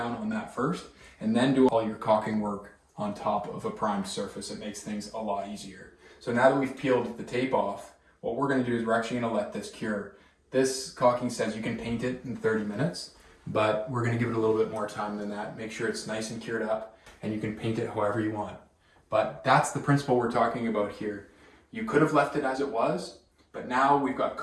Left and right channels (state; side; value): identical; both; correlation 1.00